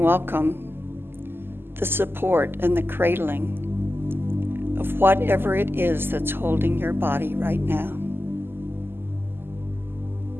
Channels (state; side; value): late; left; 0.11 ms